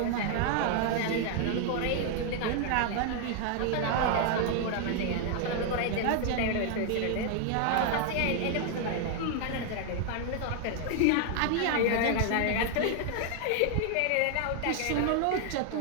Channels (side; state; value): both; different; correlation 0.00